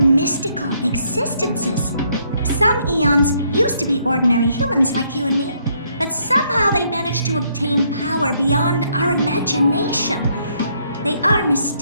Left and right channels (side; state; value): both; inverted; correlation -0.71